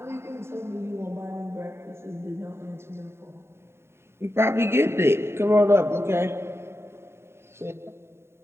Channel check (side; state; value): left; late; 0.12 ms